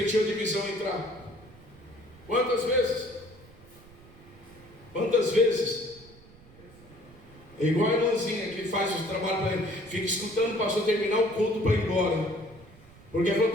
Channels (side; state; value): right; noise; rumble, 23 dB below the sound